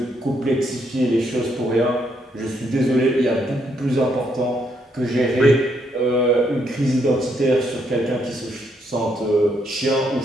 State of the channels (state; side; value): normal; both; correlation 0.74